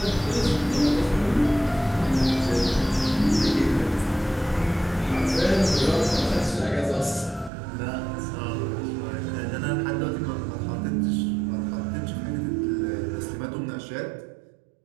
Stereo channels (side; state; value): left; drops out; at 7.5 s